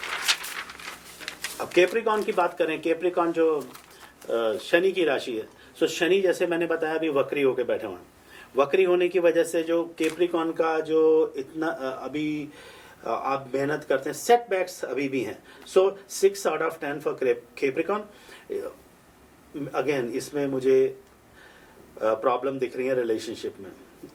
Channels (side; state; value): both; identical; correlation 1.00